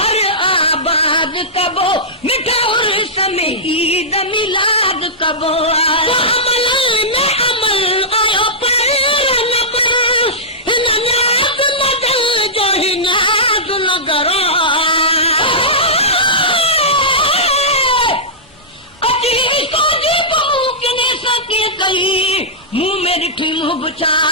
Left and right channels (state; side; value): normal; both; correlation -0.15